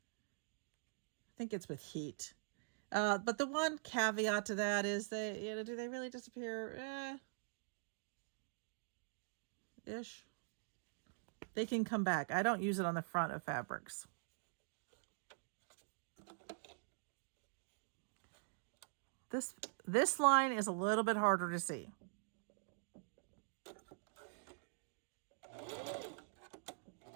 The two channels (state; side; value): silent; left; digital silence